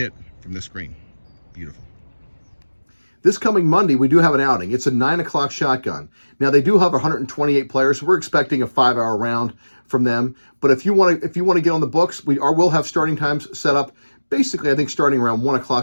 from this green. Beautiful. This coming Monday, we do have an outing. It's a 9 o'clock shotgun. Now, they do have 128 players, so we're expecting a 5-hour round from them. But if you want to get on the books, we'll have starting times set up. Basically, I think starting around 1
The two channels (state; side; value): inverted; both; correlation -1.00